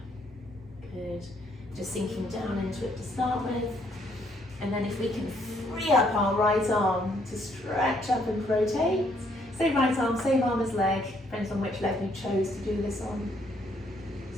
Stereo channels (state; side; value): normal; both; correlation 0.69